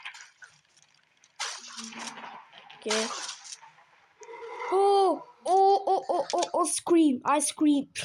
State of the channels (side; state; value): both; identical; correlation 1.00